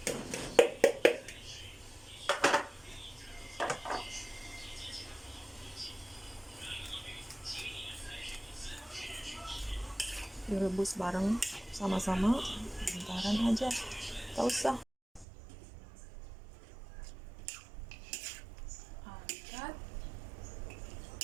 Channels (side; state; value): left; drops out; at 15.2 s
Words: Direbus bareng sama-sama, bentaran aja, tak usah. Angkat.